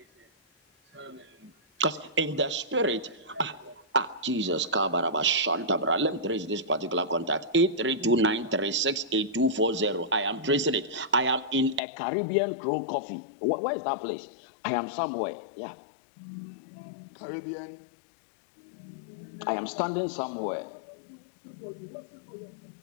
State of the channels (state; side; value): drops out; right; at 11.8 s